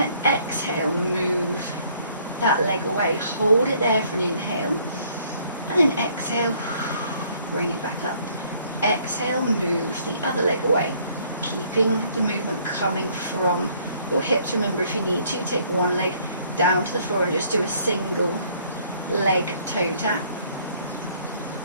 to exhale, move that leg away, hold it there for an inhale, and then exhale, bring it back up. Exhale, move the other leg away, keeping the movement coming from your hips. Remember, if you need to, take one leg down to the floor and just do a single leg toe tap.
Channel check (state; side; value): inverted; both; correlation -0.62